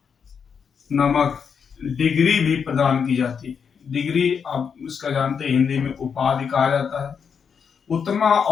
नामक डिग्री भी प्रदान की जाती है। डिग्री आप इसका जानते हैं, हिंदी में उपाधि कहा जाता है। उत्तमा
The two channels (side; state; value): right; quieter; 6.6 dB